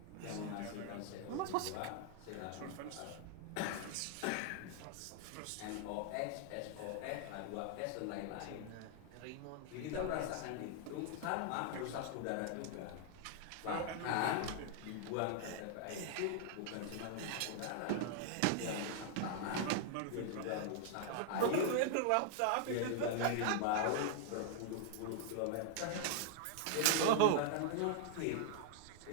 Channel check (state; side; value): different; both; correlation 0.00